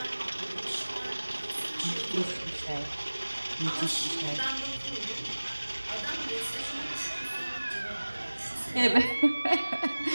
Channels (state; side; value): inverted; both; correlation -1.00